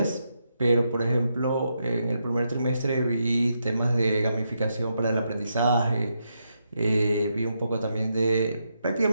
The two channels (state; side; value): inverted; both; correlation -0.82